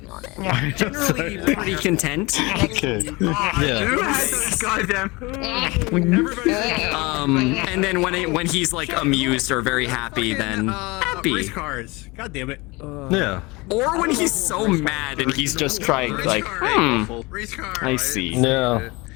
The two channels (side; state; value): right; quieter; 24.4 dB